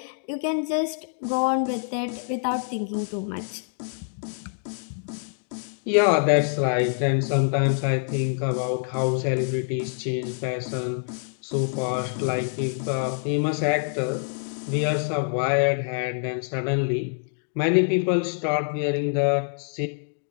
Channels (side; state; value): right; silent; digital silence